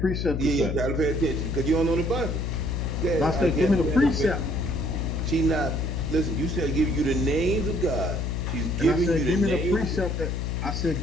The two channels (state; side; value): noise; left; hum, 1 dB below the sound